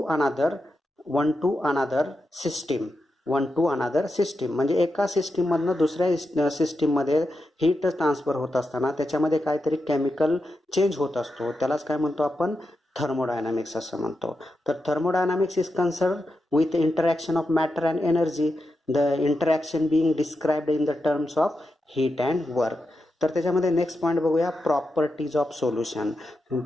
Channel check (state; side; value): normal; both; correlation 0.88